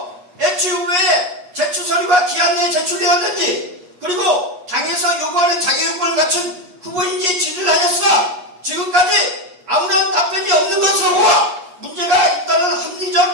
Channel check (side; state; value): left; late; 8.3 ms